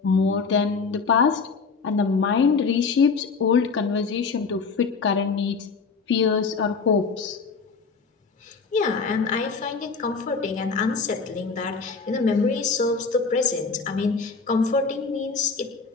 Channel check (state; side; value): quieter; right; 4.9 dB